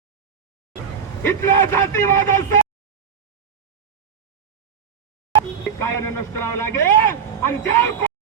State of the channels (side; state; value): left; quieter; 7.3 dB